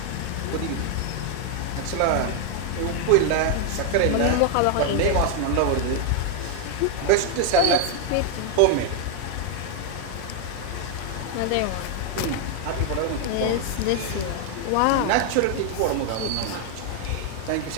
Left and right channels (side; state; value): both; different; correlation 0.00